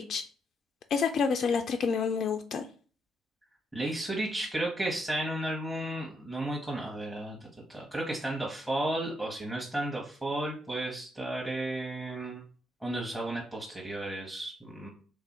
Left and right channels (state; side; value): normal; both; correlation 0.77